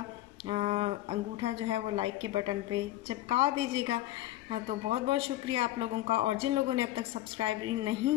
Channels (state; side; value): quieter; right; 14.8 dB